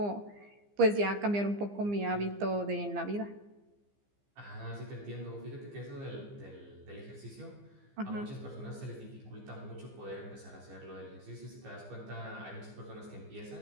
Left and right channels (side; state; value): left; late; 15 ms